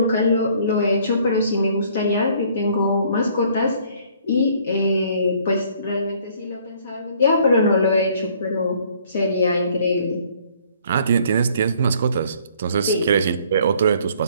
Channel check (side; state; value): both; inverted; correlation -0.59